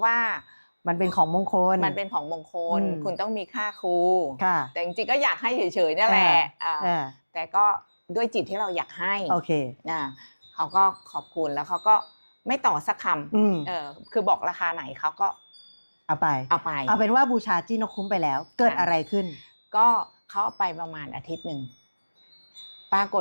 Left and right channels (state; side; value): inverted; both; correlation -1.00